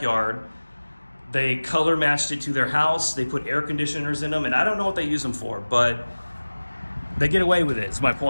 They color matched it to their house. They put air conditioners in them, and I don't know what they use them for, but they get away with it, is my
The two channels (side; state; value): both; inverted; correlation -1.00